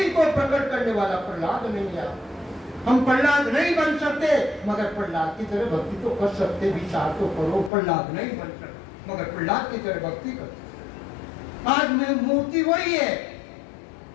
को प्रकट करने वाला प्रहलाद नहीं आता। हम प्रहलाद नहीं बन सकते, मगर प्रहलाद की तरह भक्ति तो कर सकते। विचार तो करो, प्रहलाद नहीं बन सकते मगर प्रहलाद की तरह भक्ति कर। आज में मूर्ति वही है,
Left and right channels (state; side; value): drops out; right; at 7.7 s